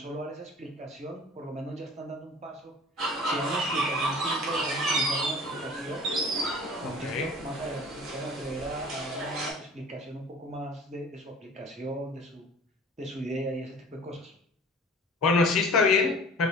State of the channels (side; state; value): both; normal; correlation 0.44